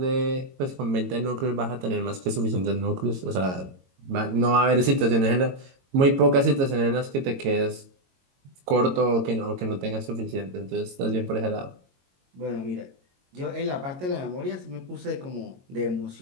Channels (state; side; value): late; left; 22 ms